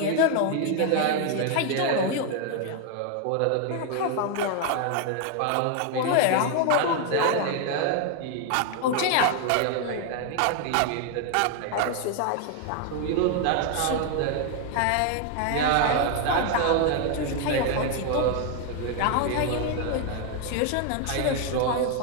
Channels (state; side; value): different; both; correlation 0.01